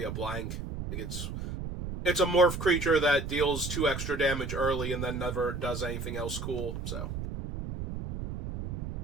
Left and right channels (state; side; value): noise; right; rumble, 5 dB below the sound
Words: a blank. Like, it's a morph creature that deals 2 extra damage early and then never does anything else cool, so...